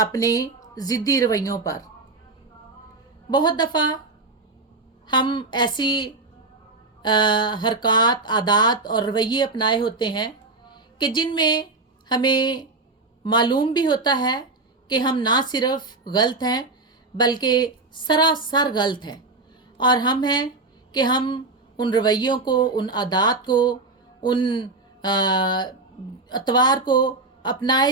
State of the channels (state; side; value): quieter; left; 3.4 dB